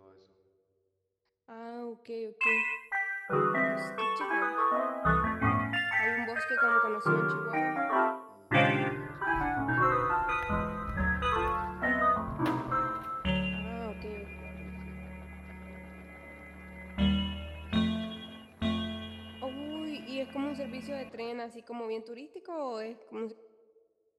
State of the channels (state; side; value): identical; both; correlation 1.00